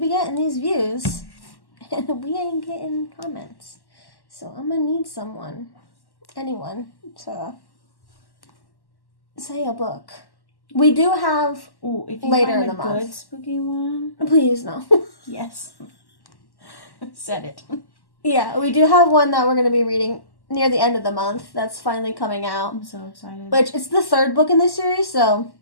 getting these views, and we ain't getting comments. So I'm going to need anyone, to say a book. We do have if you later find in the month. Good spooky one. Please, no. Yes. Said it. Yeah, we do have one that we're going to be reading near the end of the month. That's finally coming out. I'm so excited. Which, it's the third book in this series, so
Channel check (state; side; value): late; right; 1.1 ms